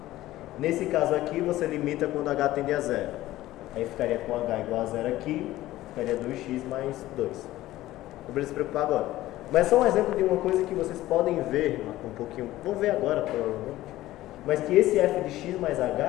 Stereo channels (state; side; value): quieter; right; 15.7 dB